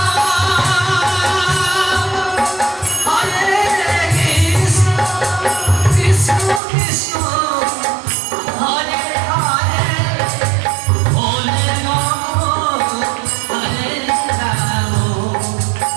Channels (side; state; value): left; drops out; at 6.6 s